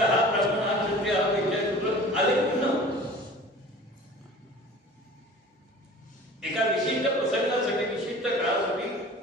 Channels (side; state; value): both; normal; correlation 0.42